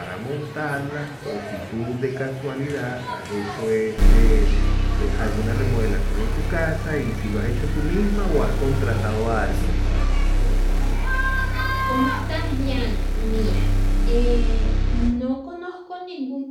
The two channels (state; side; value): identical; both; correlation 1.00